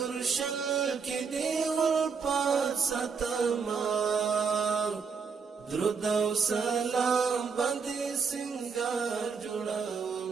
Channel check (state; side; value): quieter; left; 5.6 dB